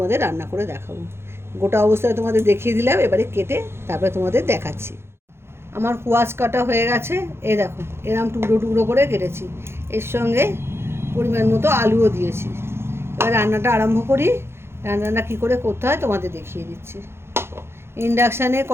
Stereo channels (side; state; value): left; late; 0.12 ms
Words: রান্না করে দেখাবো। গোটা অবস্থায় তোমাদের দেখিয়ে দিলাম, এবারে কেটে তারপরে তোমাদের দেখাচ্ছি। আমার কোয়াশ কাটা হয়ে গেছে। এই দেখো, এরম টুকরো টুকরো করে কেটেছি। এর সঙ্গে পরিমাণ মতো আলুও দিয়েছি। এবার রান্নাটা আরম্ভ করি। রান্নাটা কী করে করতে হয় তোমাদের দেখিয়ে দিচ্ছি। ইন্ডাকশানে